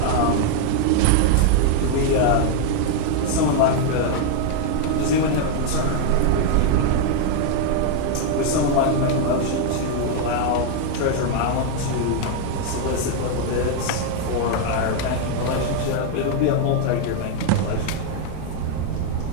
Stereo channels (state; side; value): different; both; correlation 0.00